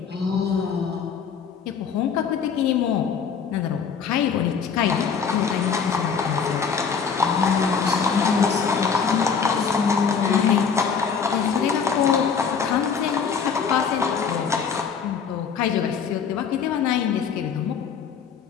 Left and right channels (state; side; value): quieter; right; 6.4 dB